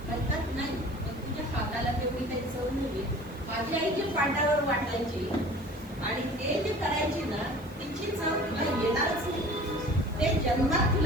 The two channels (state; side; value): noise; right; hiss, 25 dB below the sound